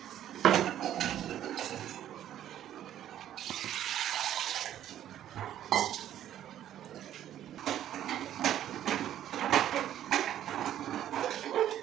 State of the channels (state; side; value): quieter; left; 11.4 dB